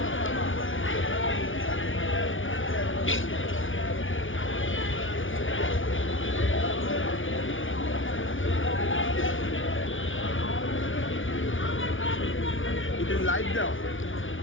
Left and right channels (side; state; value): right; late; 0.57 ms